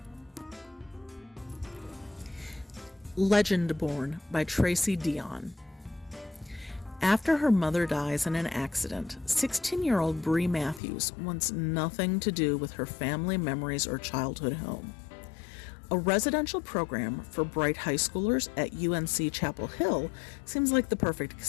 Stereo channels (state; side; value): drops out; right; at 10.8 s